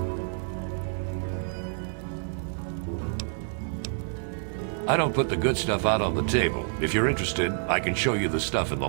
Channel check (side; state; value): left; silent; 59 dB below the other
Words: I don't put the good stuff out on the table. If you're interested, I can show you the stuff in the